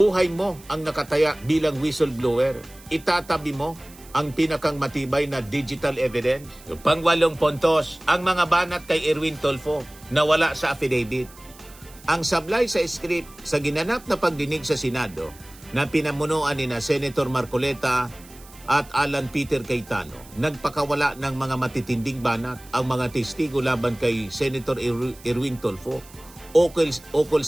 mo ang nakataya bilang whistleblower, itatabi mo ang pinakang matibay na digital evidence. Pang-8 puntos, ang mga banat kay Erwin Tulfo na wala sa affidavit. Ang sablay sa script sa ginanap na pagdinig sa Senado na pinamunuan ni na Senator Marcoleta at Alan Peter Cayetano, nagpakawala ng mga matitinding banat ang mga testigo laban kay Senator Erwin Tulfo ukol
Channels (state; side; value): noise; right; hiss, 22 dB below the sound